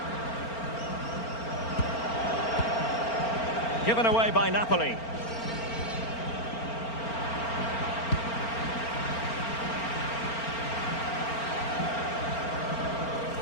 Given away by Napoli.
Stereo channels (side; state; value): right; late; 4.4 ms